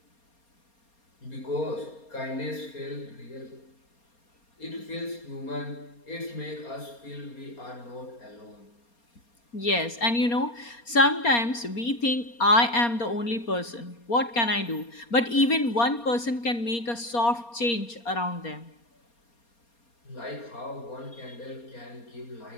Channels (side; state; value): right; late; 4.3 ms